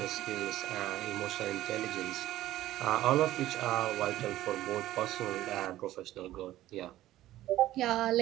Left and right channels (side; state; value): left; quieter; 14.7 dB